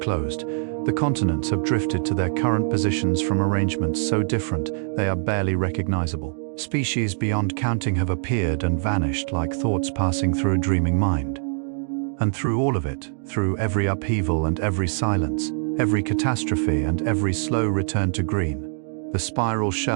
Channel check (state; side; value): silent; left; digital silence